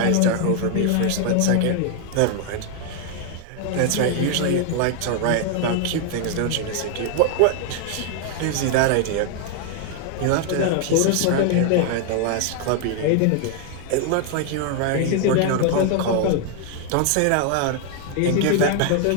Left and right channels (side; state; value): both; different; correlation 0.00